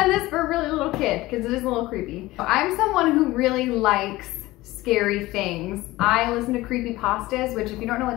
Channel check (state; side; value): quieter; right; 18.6 dB